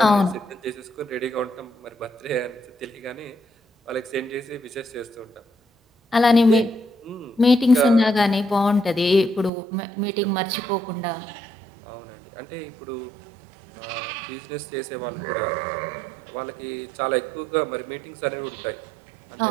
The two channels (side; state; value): left; drops out; at 9.5 s